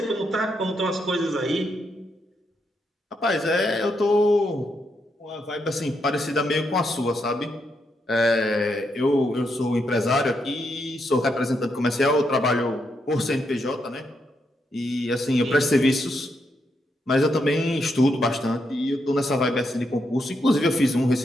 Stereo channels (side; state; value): both; normal; correlation 0.80